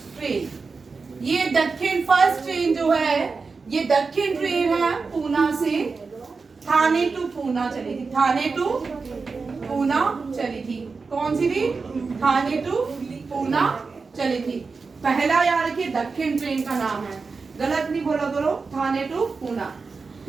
ट्रेन। ये दक्षिण फर्स्ट ट्रेन जो है ये दक्षिण ट्रेन है, पूना से थाने टू पूना चली थी, थाने टू पूना चली थी। कौन सी थी? थाने टू पूना चली थी। पहला याद रखिए दक्षिण ट्रेन का नाम है, गलत नहीं बोला करो, थाने टू पूना,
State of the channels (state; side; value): quieter; left; 4.5 dB